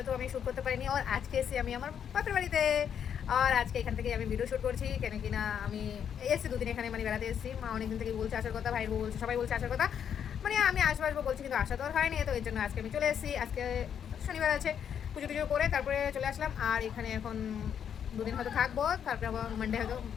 তো আমি শ্যুট করতে পারিনি। আর আজকে এসে আমি আমার বাপের বাড়িতে, আর আজকে এখান থেকে আমি ভিডিও শ্যুট করছি। কেন কিনা আমি এসেছি দুদিন এখানে, মানে বেড়াতে এসেছি। মা অনেকদিন থেকে বলছে আসার কথা, ভাইয়ের বউ বলছে, সবাই বলছে আসার কথা। মানে আমি আসবো বলছি, কিন্তু আসা তো আর হয়নি। তো এর জন্য আজকে আমি চলে এসেছি। আজকে শনিবার আছে, পুজো টুজো করে তারপরে চলে আসলাম। আর এখানে এখন দুদিন হয়তো থাকবো, তারপরে আবার মানডে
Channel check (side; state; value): right; quieter; 8.4 dB